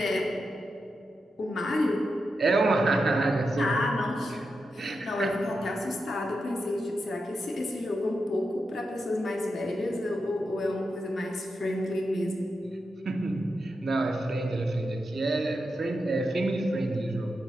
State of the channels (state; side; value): normal; both; correlation 0.88